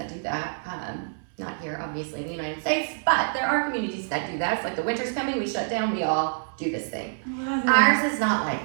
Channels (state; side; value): silent; left; 61 dB below the other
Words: do that. Not here, obviously, in the United States, but there are communities that do that. It's like the winter's coming, we shut down, we all do this thing. Ours is not